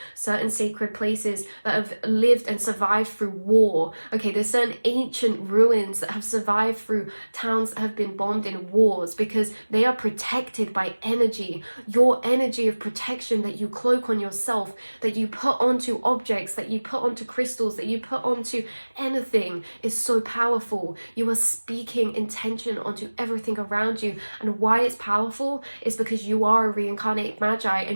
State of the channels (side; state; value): both; inverted; correlation -1.00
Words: certain sacred places that have lived and survived through war. Okay, there's certain ancient ruins that have survived through towns that have been bombed in wars, because they are protected by energy. Your energy of protection that you cloak on yourself, that you put onto objects, that you put onto crystals, that you put onto anything, is so powerful. You are speaking intention onto everything around you. And why it's powerful is because you are a reincarnated magi,